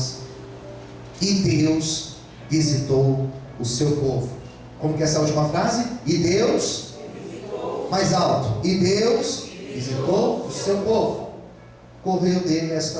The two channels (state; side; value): identical; both; correlation 1.00